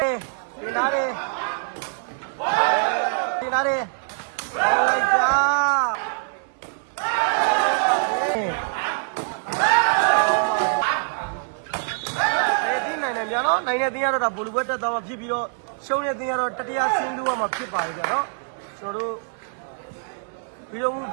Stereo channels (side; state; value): left; silent; 62 dB below the other